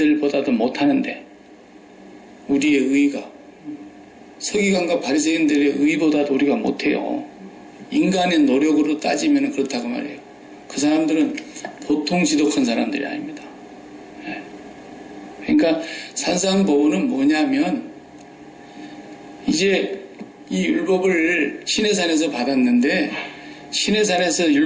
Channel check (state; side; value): identical; both; correlation 1.00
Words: 못하는데, 우리의 의가 서기관과 바리새인들의 의보다도 우리가 못해요. 인간의 노력으로 따지면 그렇다고 말해요. 그 사람들은 보통 지독한 사람들이 아닙니다. 그러니까 산상보훈은 뭐냐면, 이제 이 율법을 시내산에서 받았는데, 시내산에서